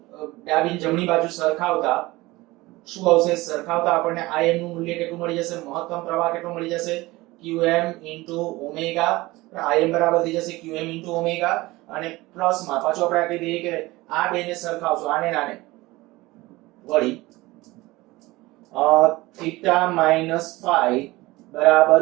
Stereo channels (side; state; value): left; quieter; 20.2 dB